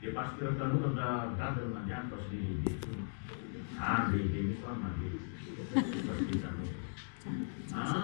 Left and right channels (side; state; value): right; silent; digital silence